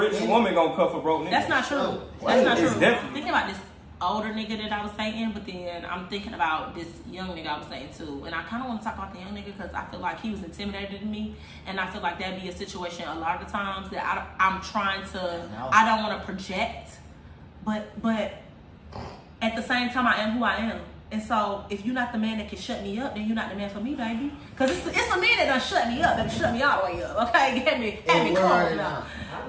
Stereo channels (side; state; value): both; identical; correlation 1.00